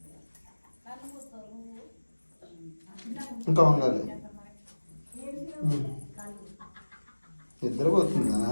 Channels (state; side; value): inverted; both; correlation -1.00